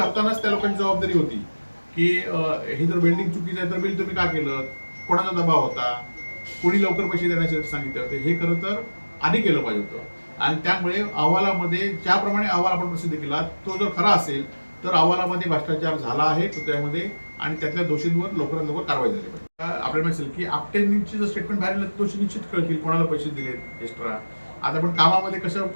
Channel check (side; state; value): both; inverted; correlation -1.00